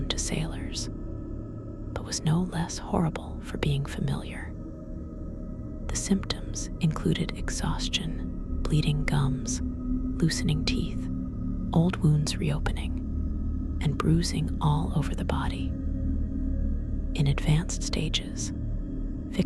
to sailors, but was no less horrible for being familiar. The symptoms included exhaustion, bleeding gums, loosening teeth, old wounds reopening, and bruising all over the body. In advanced stages,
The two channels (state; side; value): identical; both; correlation 1.00